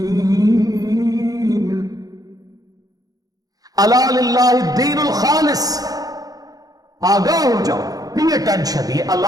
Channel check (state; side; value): late; left; 0.18 ms